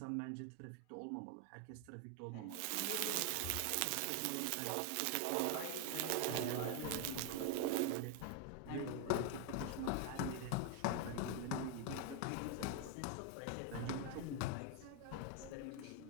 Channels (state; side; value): different; both; correlation 0.00